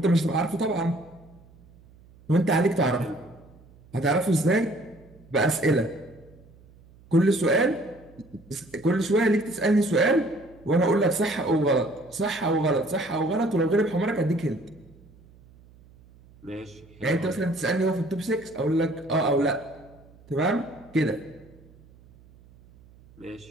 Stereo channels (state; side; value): noise; right; hum, 26 dB below the sound